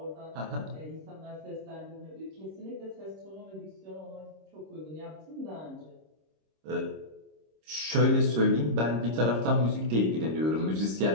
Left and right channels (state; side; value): late; left; 26 ms